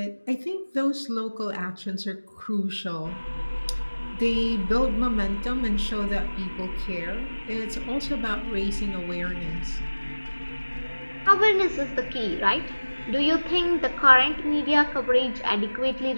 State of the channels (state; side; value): inverted; both; correlation -1.00